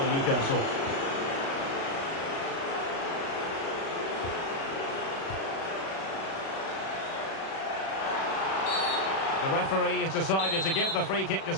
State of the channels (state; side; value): late; right; 36 ms